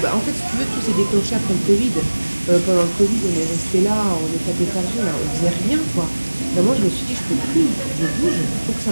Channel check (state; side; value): inverted; both; correlation -1.00